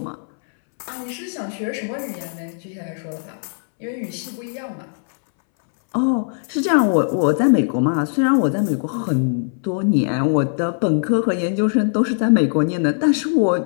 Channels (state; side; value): silent; right; 65 dB below the other